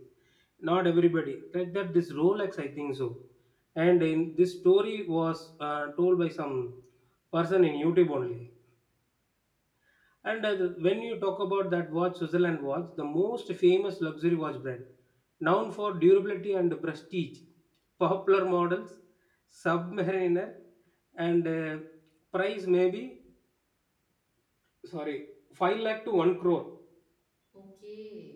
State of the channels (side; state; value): both; identical; correlation 1.00